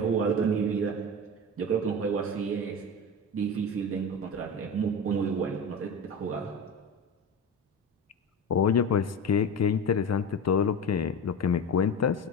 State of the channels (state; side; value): normal; both; correlation 0.26